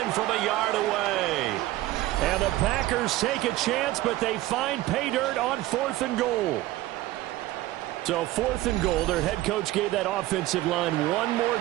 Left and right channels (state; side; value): quieter; left; 16.5 dB